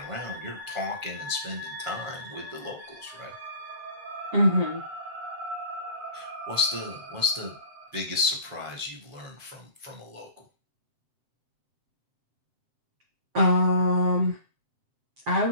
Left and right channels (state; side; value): late; left; 7.7 ms